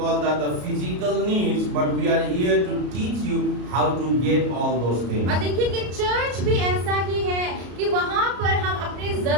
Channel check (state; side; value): late; left; 33 ms